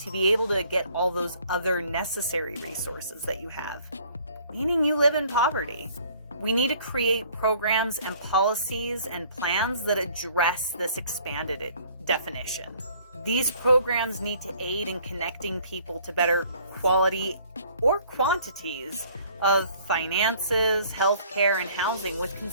be able to get all those other necessary resources that you have, meaning you live in poverty. We need to create programs and policies and plans that address this expanded definition. These programs need to aid in connecting people to better quality or quantities of finances, healthcare, and housing with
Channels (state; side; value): inverted; both; correlation -0.57